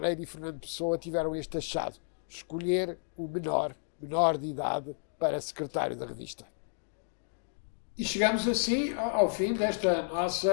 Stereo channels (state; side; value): silent; right; digital silence